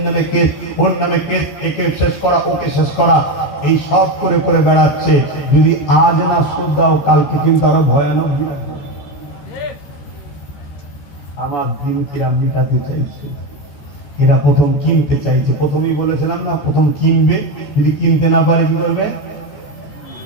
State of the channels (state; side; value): late; right; 14 ms